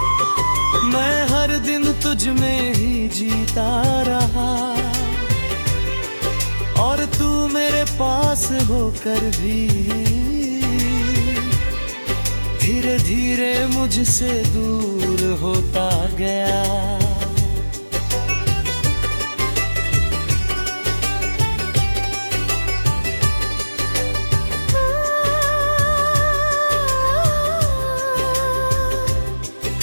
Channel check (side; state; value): both; inverted; correlation -1.00